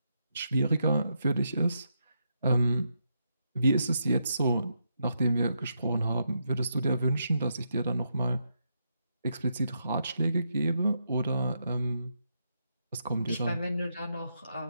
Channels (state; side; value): inverted; both; correlation -0.81